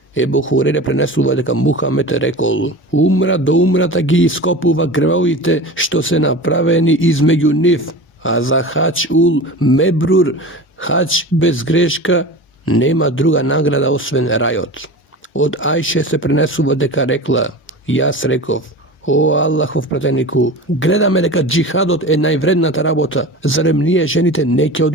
Ебу Хурере пренесува дека Мухамед рекол, умра до умрата ги ископува гревовите што се направени измеѓу нив, а за хадж ул мебрур, хадж без грешка, нема друга награда освен рајот. Од Аише се пренесува дека рекла, јас реков, о Аллахов пратенику, гледаме дека џихадот е највредната работа, зарем ние жените не ќе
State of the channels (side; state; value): both; normal; correlation 0.32